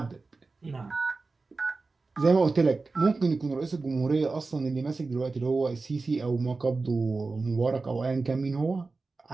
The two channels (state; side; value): quieter; left; 3.8 dB